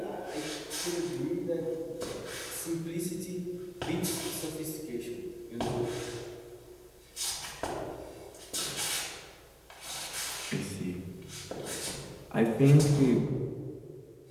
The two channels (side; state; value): both; identical; correlation 1.00